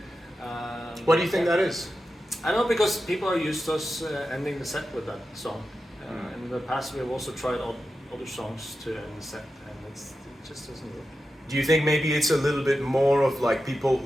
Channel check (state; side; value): normal; both; correlation 0.91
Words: And what do you think that is? I don't know, because people are used to us ending the set with that song. In the past, we have also tried other songs to end the set, and it just doesn't work. Do you think maybe it's a little bit more of like people